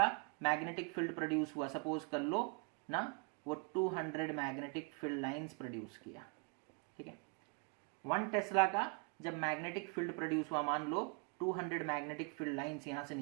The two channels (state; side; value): quieter; left; 33.7 dB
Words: मैग्नेटिक फील्ड प्रोड्यूस हुआ, सपोज कर लो ना वो 200 मैग्नेटिक फील्ड लाइंस प्रोड्यूस किया, ठीक है। 1 टेस्ला का जब मैग्नेटिक फील्ड प्रोड्यूस हुआ, मान लो 200 मैग्नेटिक फील्ड लाइंस यहां से